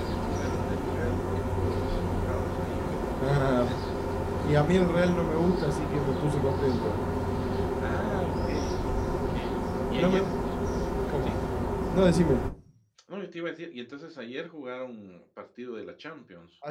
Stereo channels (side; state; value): both; identical; correlation 1.00